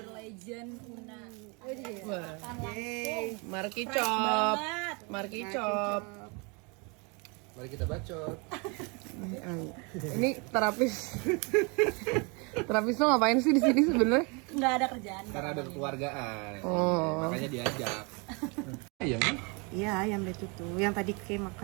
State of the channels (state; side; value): quieter; left; 31.3 dB